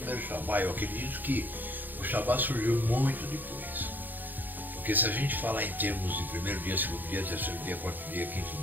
Shabá. Eu acredito que o Shabá surgiu muito depois. Porque se a gente falar em termos de primeiro dia, segundo dia, terceiro dia, quarto dia, quinto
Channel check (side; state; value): left; late; 0.087 ms